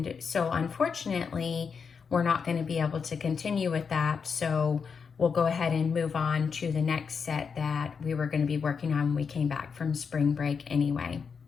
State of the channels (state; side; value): quieter; right; 5.9 dB